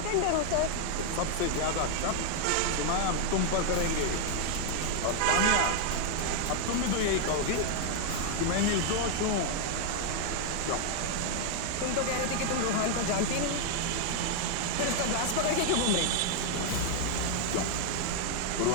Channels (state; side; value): different; both; correlation 0.00